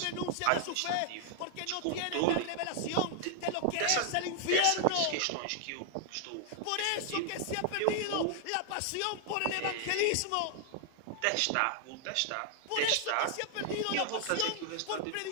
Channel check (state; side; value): different; both; correlation 0.00